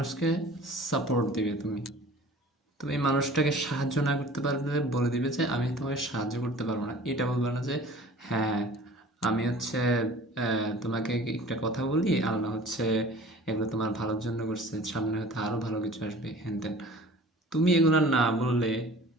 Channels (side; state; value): both; normal; correlation 0.45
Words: সাপোর্ট দিবে তুমি। তুমি মানুষটাকে সাহায্য না করতে পারলে বলে দিবে যে আমি তোমাকে সাহায্য করতে পারবো না। এটা বলবে না যে হ্যাঁ আমি তোমাকে একটা কথা বলি, আল্লাহ এগুলো তোমার ভালোর জন্য করছে, সামনে হয়তো আরো ভালো কিছু আসবে হ্যান ত্যান। তুমি এগুলো না বললে